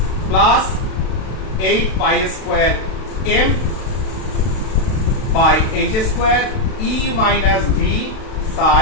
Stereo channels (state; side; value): late; right; 32 ms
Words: plus 8 pi square m by h square e minus v